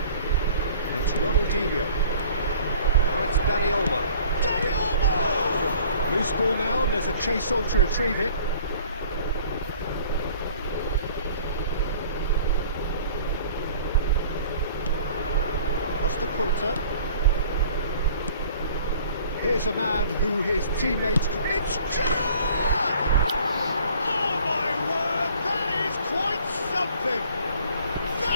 It's Ronaldinho. Now it's Dani Olmo. Dani Olmo! Loose ball now, and there's a chase on to retrieve it. Costa Curta. Here's a man who his teammates... It's Gerrard! Oh my word, that is quite something!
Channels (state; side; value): inverted; both; correlation -0.51